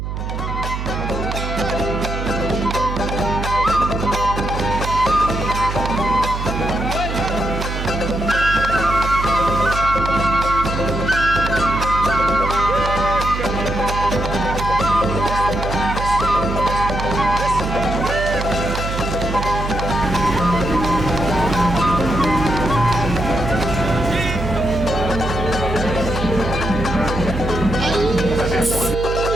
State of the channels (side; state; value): right; noise; hum, 5 dB below the sound